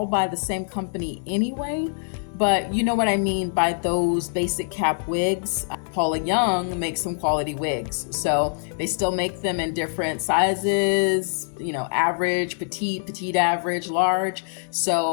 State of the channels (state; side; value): silent; right; 59 dB below the other